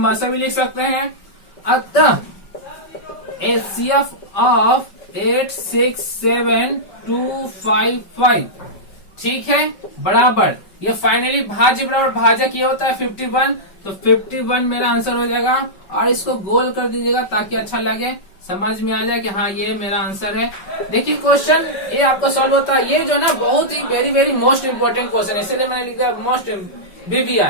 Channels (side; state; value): right; late; 5.3 ms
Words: भी लिख सकते हैं। अतः HCF ऑफ 867255, ठीक है, बराबर ये फाइनली भाज्य बराबर भाजक ये होता है 51, तो 51 मेरा आंसर हो जाएगा। और इसको गोल कर दीजिएगा ताकि अच्छा लगे, समझ में आ जाए कि हाँ ये मेरा आंसर है। देखिए क्वेश्चन ये आपको सॉल्व होता है, ये जो ना बहुत ही very very most important question है, इसलिए मैंने लिख दिया मोस्ट